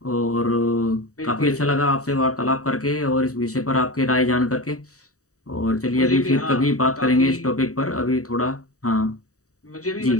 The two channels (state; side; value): late; right; 0.66 ms